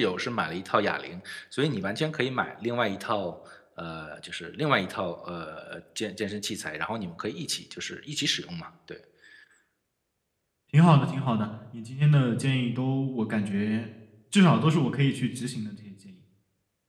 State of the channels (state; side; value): identical; both; correlation 1.00